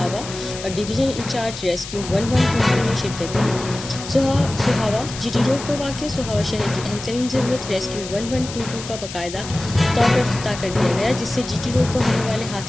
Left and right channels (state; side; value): noise; left; hiss, 11 dB below the sound